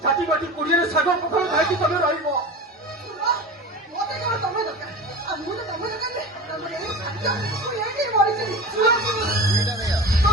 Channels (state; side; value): normal; both; correlation 0.31